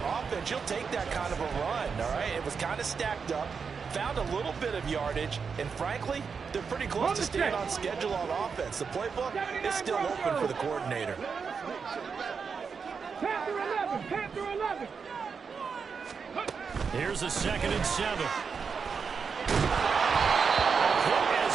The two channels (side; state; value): left; quieter; 5.7 dB